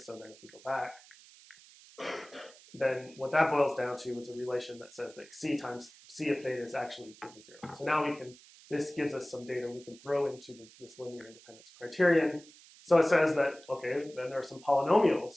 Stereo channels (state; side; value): noise; right; hiss, 22 dB below the sound